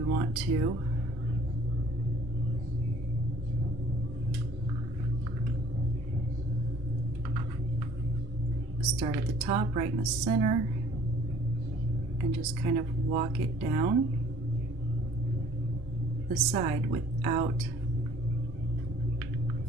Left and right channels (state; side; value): normal; both; correlation 0.55